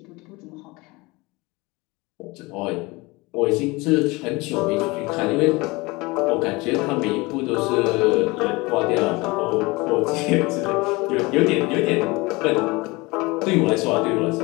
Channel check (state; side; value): quieter; right; 23.8 dB